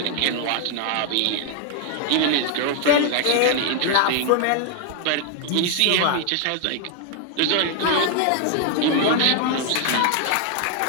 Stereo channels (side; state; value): both; different; correlation 0.00